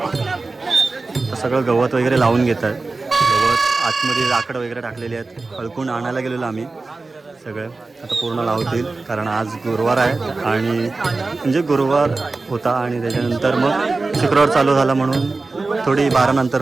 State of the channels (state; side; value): quieter; left; 3.6 dB